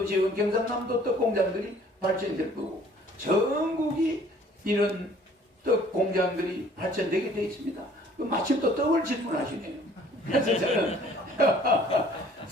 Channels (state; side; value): normal; both; correlation 0.55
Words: 지역은 경상남도 떡 공장들이 발전될 거고 전국이 이런 떡 공장들이 발전되게 되어 있습니다. 마침 또 떡을 질문하시네요. 그래서 저는